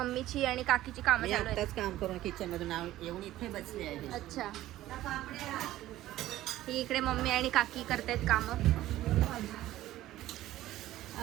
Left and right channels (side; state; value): left; quieter; 14.8 dB